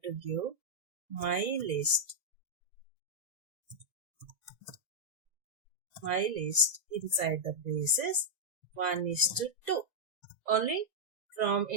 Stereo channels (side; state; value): left; late; 2.0 ms